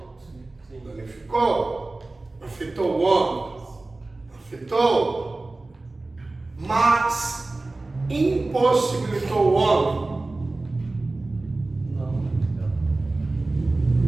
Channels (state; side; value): quieter; left; 3.1 dB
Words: Danificou, afetou o homem, afetou, mas impossibilitou o homem?